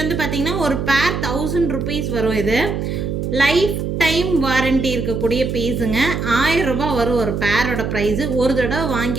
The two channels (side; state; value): right; noise; hum, 2 dB below the sound